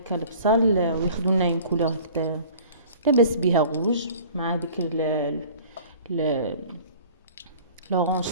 البصل وياخذوا لنا اون كولور هكذا لاباس بها غوج مع ديك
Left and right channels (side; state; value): both; inverted; correlation -0.47